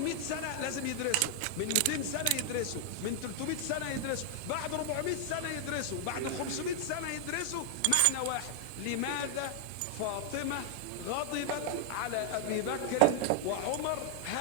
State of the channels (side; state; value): both; different; correlation 0.00